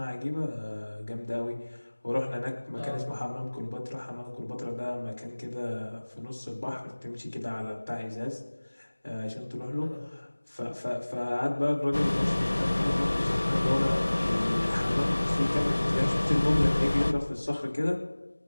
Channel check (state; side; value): inverted; both; correlation -1.00